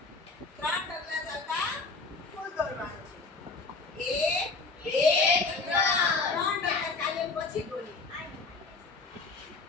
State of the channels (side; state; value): right; quieter; 3.9 dB